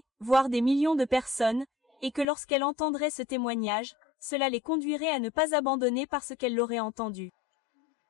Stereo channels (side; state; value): right; drops out; at 2.2 s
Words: voire des millions de personnes, et que lorsqu'elles entendraient ce témoignage, cela les conduirait à ne pas abandonner parce qu'elles l'auraient entendu.